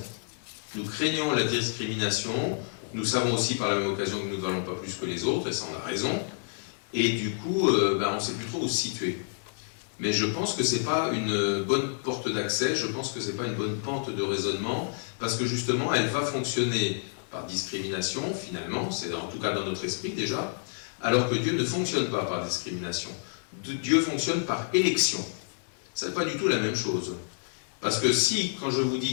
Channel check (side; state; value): right; silent; digital silence